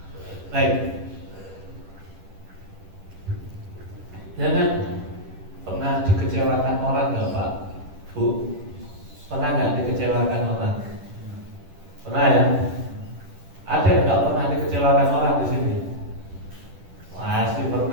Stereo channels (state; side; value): late; left; 10 ms